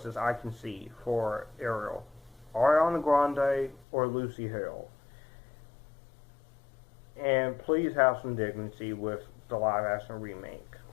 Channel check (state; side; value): drops out; right; at 3.9 s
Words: I can see for Ariel: Ariana Grande or Lucy Hale. And please have some dignity with the live action remake.